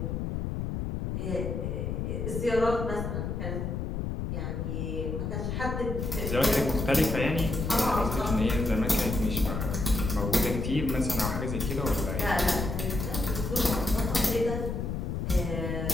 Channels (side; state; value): left; noise; rumble, 2 dB below the sound